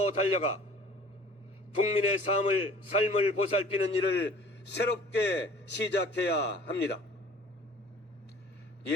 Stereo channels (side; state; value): both; normal; correlation 0.49